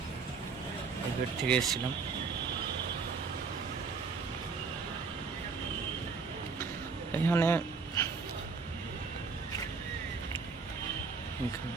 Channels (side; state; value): left; quieter; 4.9 dB